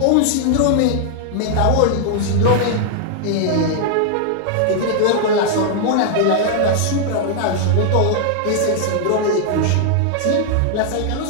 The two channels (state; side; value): different; both; correlation 0.00